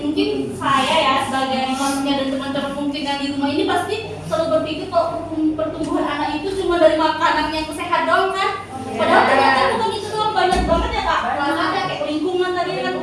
mungkin saya ya sebagai manusia dan teman-teman mungkin yang di rumah ini pasti selalu berpikir kalau pertumbuhan anak itu cuma dari makanan yang sehat doang kan. Padahal ternyata bukan itu doang, banyak banget ya Kak. Ada kayak lingkungan tadi kan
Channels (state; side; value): identical; both; correlation 1.00